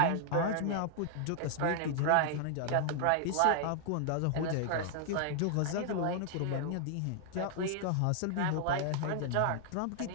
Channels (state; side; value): different; both; correlation -0.01